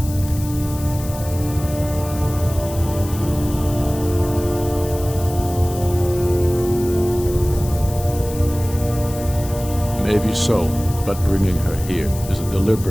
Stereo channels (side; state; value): left; noise; hiss, 14 dB below the sound